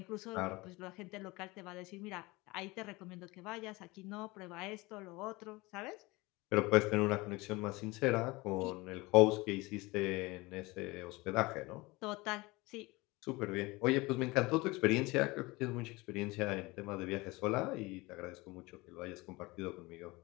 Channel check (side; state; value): right; quieter; 22.9 dB